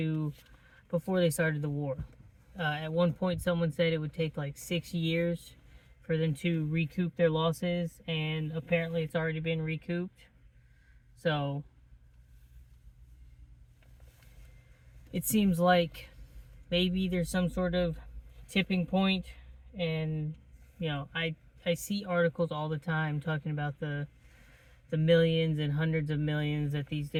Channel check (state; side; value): identical; both; correlation 1.00